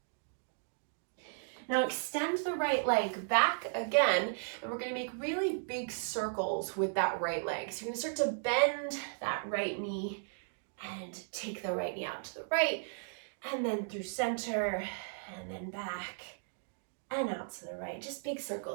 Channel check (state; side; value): silent; left; digital silence